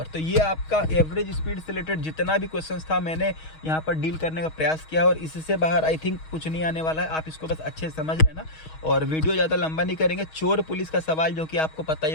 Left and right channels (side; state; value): right; late; 6.3 ms